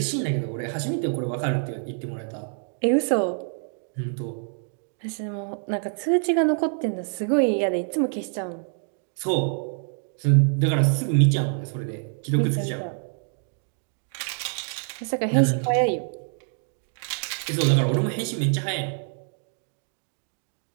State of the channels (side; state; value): left; silent; 59 dB below the other